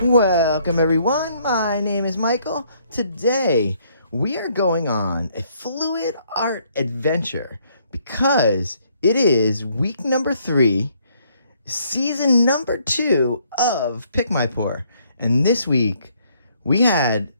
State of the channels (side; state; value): both; inverted; correlation -0.67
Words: Welcome everyone, my name is Michael. Today we are going on a fluid art adventure because it is week number 3, season number 2 of Pick My Pour. And this week we had